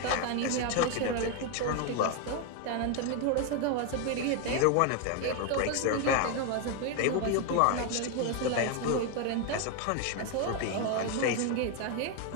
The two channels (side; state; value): both; different; correlation 0.01